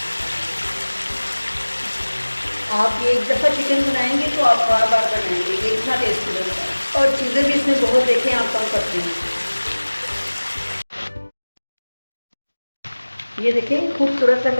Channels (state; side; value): inverted; both; correlation -1.00